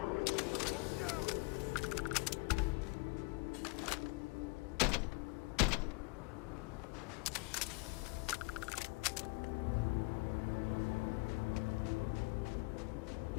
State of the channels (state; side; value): quieter; right; 28.8 dB